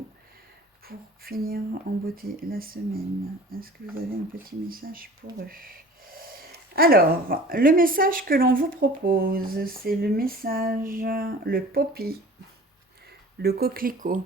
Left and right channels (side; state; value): both; normal; correlation 0.44